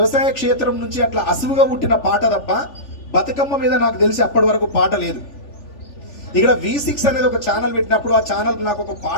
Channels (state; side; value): late; right; 3.4 ms